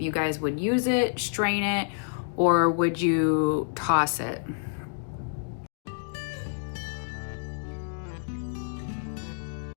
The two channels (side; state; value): right; silent; digital silence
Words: you guys would use it, strain it, or would you toss it?